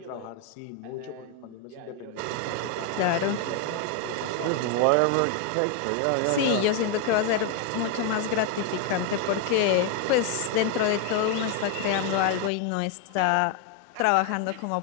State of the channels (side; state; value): both; different; correlation 0.01